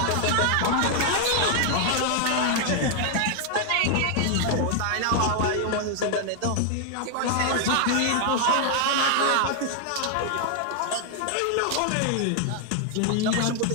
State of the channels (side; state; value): both; different; correlation 0.00